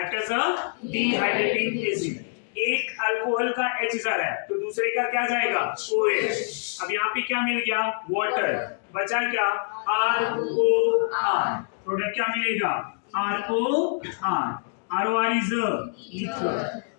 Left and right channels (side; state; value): right; silent; digital silence